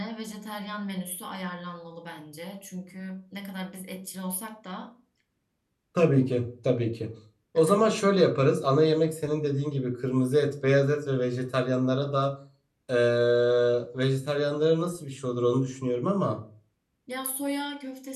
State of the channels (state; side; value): identical; both; correlation 1.00